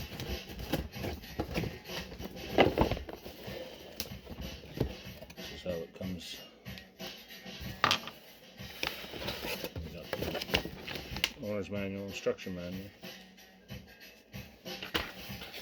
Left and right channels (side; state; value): both; identical; correlation 1.00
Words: This is how it comes. We got the owner's manual, instruction manual.